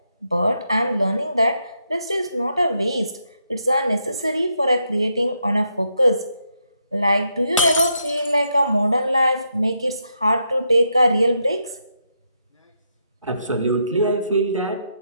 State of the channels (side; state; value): both; inverted; correlation -0.80